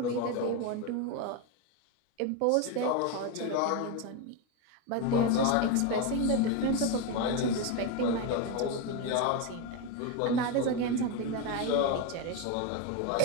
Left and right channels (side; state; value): both; different; correlation 0.03